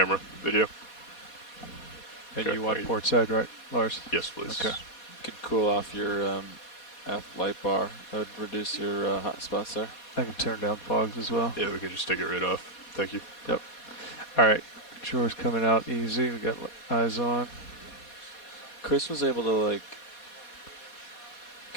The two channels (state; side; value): late; right; 4.2 ms